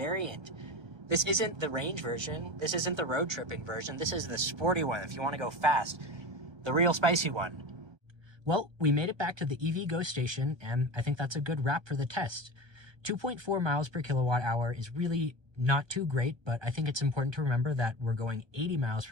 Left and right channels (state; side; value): late; left; 1.3 ms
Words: This isn't the range version. This isn't the road tripping version. This is the sporty one if you want to go fast. The real spicy one. Well, we made it back to the EV Go station, and I think that's a good wrap for the test. 2.4 miles per kilowatt hour is really not too great, but I think it's important to remember that we're going 80 miles